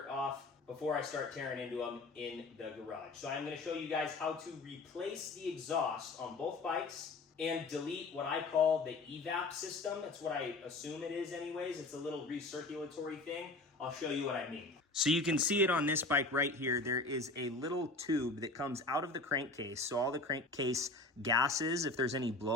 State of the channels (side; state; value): right; quieter; 3.2 dB